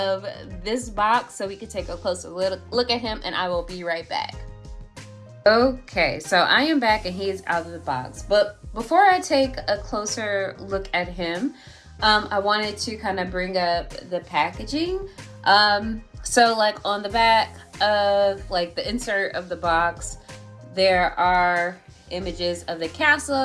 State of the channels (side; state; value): both; identical; correlation 1.00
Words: this box so we can take a closer look at him, and I will be right back. Okay, so I am back and he is out of the box. But before I take a closer look at him, I wanted to kind of bring up the packaging. So like on the back of like the insert of the box, there are images of the